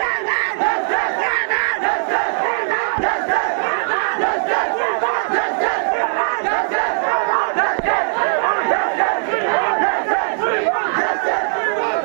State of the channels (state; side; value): silent; left; digital silence